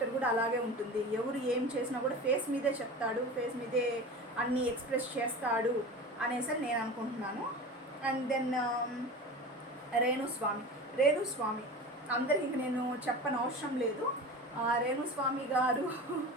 కూడా అలాగే ఉంటుంది. ఎవరు ఏం చేసినా కూడా ఫేస్ మీదే చెప్తాడు, ఫేస్ మీదే అన్నీ ఎక్స్ప్రెస్ చేస్తాడు అనేసి నేను అనుకుంటున్నాను. అండ్ దెన్ రేణుస్వామి అందరికి ఇంక నేను చెప్పని అవసరం లేదు. Renuswamy garu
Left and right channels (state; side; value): normal; both; correlation 0.32